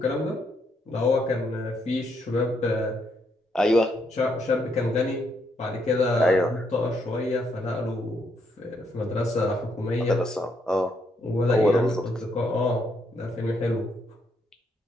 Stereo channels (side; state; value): both; normal; correlation 0.75